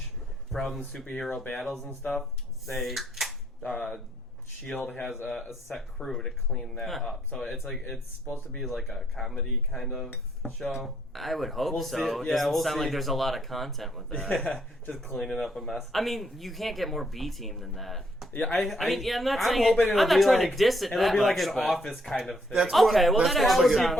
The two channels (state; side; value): normal; both; correlation 0.71